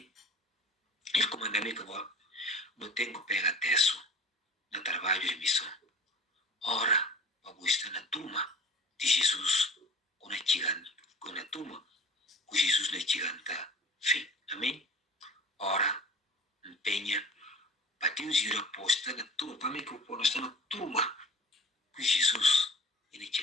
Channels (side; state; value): both; normal; correlation 0.43